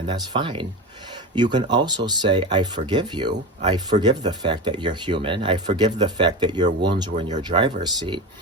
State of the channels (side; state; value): both; normal; correlation 0.25